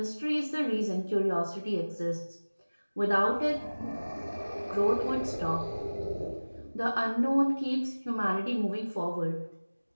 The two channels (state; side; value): inverted; both; correlation -1.00